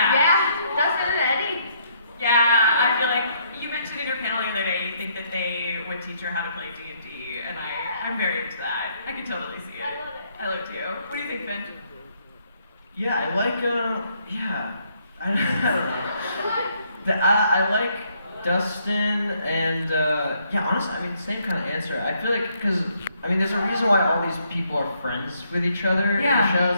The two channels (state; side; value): inverted; both; correlation -0.70